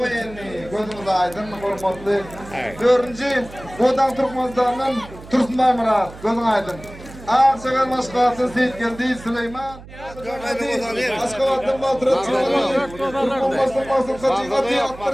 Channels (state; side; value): noise; right; hum, 17 dB below the sound